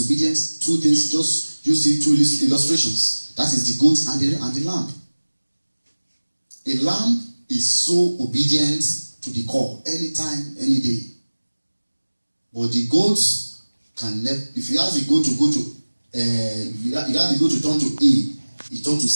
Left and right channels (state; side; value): inverted; both; correlation -1.00